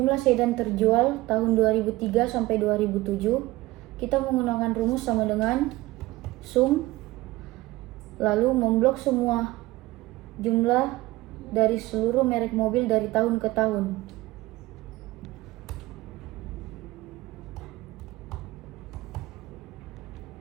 sedan terjual tahun 2003 sampai 2007, kita menggunakan rumus sama dengan sum lalu memblok semua jumlah dari seluruh merek mobil dari tahun ke tahun.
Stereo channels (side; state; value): left; quieter; 18.8 dB